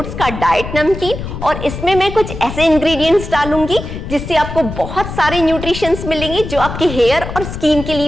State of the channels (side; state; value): left; noise; rumble, 8 dB below the sound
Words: का डाइट नमकीन और इसमें मैं कुछ ऐसे इंग्रेडिएंट्स डालूंगी जिससे आपको बहुत सारे न्यूट्रिशंस मिलेंगे जो आपके हेयर और स्किन के